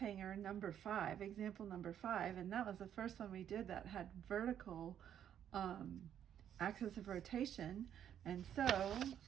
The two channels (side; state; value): left; quieter; 9.7 dB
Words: number 5, example number 5, and that was the first one we did that had vertical axis of rotation. And so,